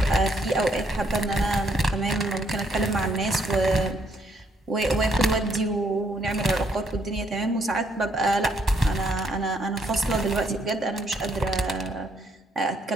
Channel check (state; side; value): normal; both; correlation 0.71